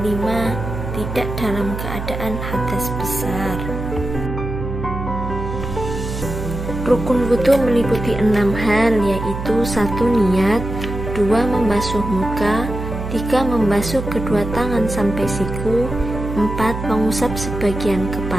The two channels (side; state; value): right; noise; hum, 6 dB below the sound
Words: 5. Tidak dalam keadaan hadas besar. Rukun wudu meliputi 6 hal, yaitu 1. Niat, 2. Membasuh muka, 3. Membasuh kedua tangan sampai siku, 4. Mengusap sebagian